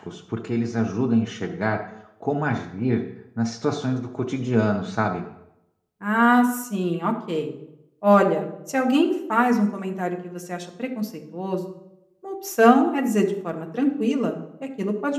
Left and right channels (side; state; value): both; identical; correlation 1.00